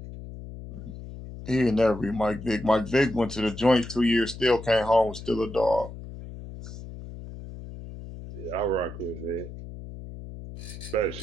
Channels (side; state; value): left; noise; hum, 12 dB below the sound